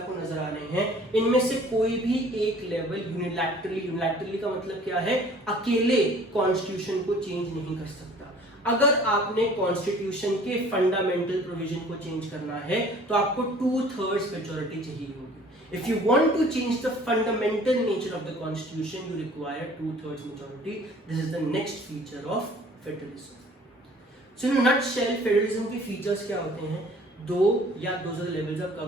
नजर आ रहे हैं, इनमें से कोई भी एक लेवल यूनिलैटरली का मतलब क्या है, अकेले कॉन्स्टिट्यूशन को चेंज नहीं कर सकता। अगर आपने कॉन्स्टिट्यूशन के फंडामेंटल प्रोविजन को चेंज करना है तो आपको 2/3 मेजॉरिटी चाहिए होगी। If you want to change the fundamental nature of the constitution, you require 2/3 majority. This is the next feature of federalism. So in a nutshell, federalism के features क्या होते हैं? 2 या 2 से लेवल्स ऑफ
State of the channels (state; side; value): normal; both; correlation 0.51